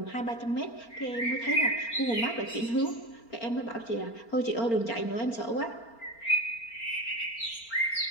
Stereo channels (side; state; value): right; late; 4.4 ms